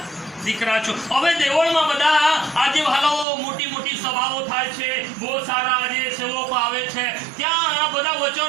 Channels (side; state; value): left; drops out; at 3.2 s